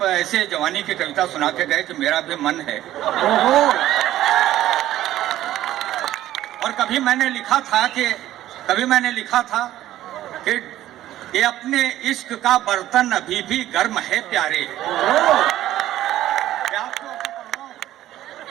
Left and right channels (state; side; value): quieter; left; 13.7 dB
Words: ऐसे जवानी की कविता सुना के गए कि मेरा भी मन है। और कभी मैंने लिखा था कि ये अपने इश्क का बर्तन अभी भी गर्म है प्यारे।